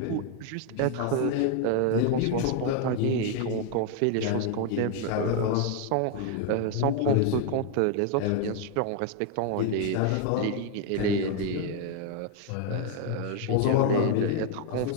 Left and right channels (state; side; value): different; both; correlation 0.01